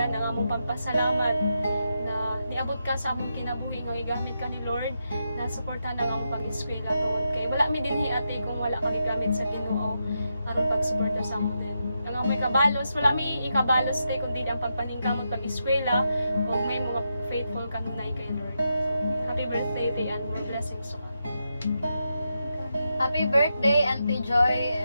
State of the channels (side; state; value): both; inverted; correlation -0.85